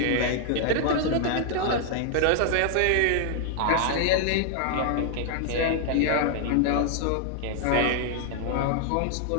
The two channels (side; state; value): both; different; correlation 0.00